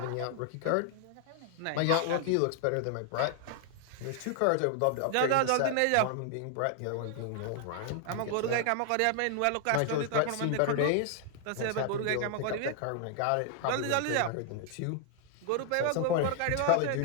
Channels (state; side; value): different; both; correlation 0.00